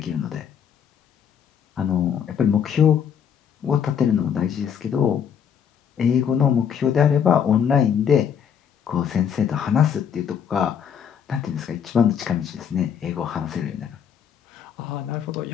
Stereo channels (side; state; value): right; quieter; 8.0 dB